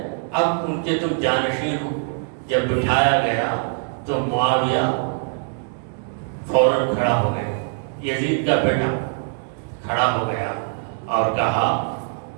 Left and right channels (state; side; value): silent; left; digital silence